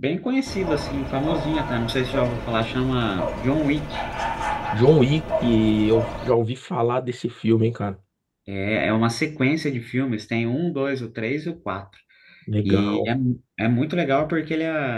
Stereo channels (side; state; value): both; identical; correlation 1.00